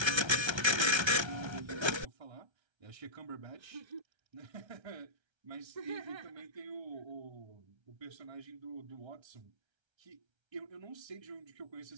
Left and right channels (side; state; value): left; late; 1.3 ms